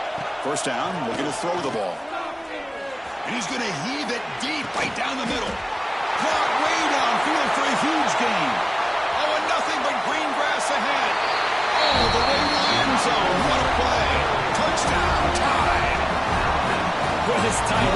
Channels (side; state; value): both; identical; correlation 1.00